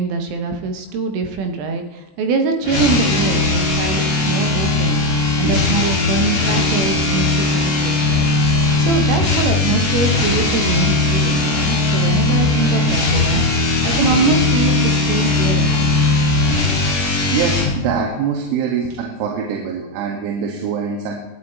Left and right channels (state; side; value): late; left; 20 ms